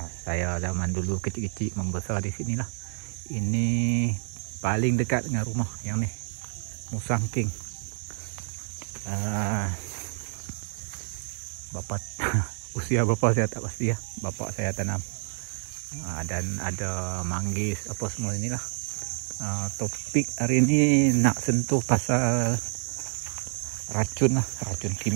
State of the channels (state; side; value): silent; left; digital silence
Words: Saya zaman dulu kecil-kecil membesar di sini lah. Ini paling dekat dengan rumah yang ni, Musang King. Bapak usia bapak saya tak pasti ya. Bapak saya tanam. Dan ada manggis apa semua inilah. Topik hari ini nak sentuh pasal racun lah, racun